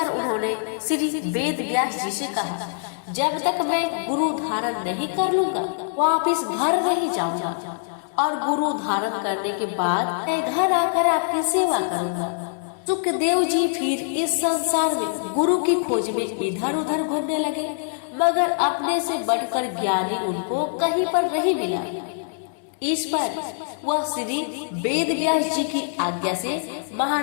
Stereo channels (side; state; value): right; silent; digital silence